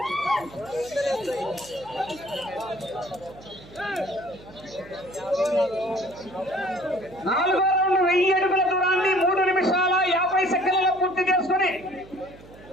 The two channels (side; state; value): right; noise; hum, 20 dB below the sound